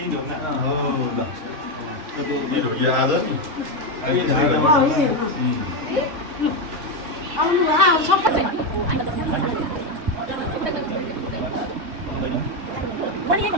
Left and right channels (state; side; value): late; left; 3.5 ms